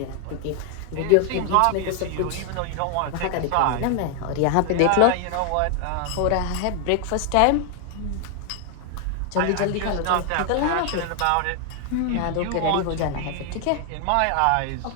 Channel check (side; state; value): both; different; correlation 0.00